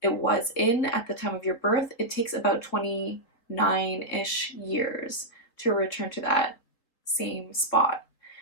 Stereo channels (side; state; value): right; late; 3.9 ms